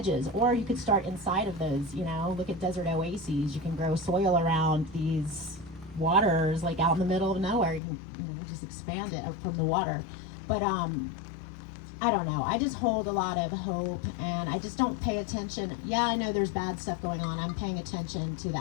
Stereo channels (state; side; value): drops out; right; at 7.8 s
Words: or you could start inside of those, look at desert oases. You can grow soil around these waters, out in the middle of nowhere. You can, just expand it from the water. But I don't know. I just hold a lot of hope, and I just don't pay attention. Yeah, I know there's bad stuff going on. I'm paying attention to the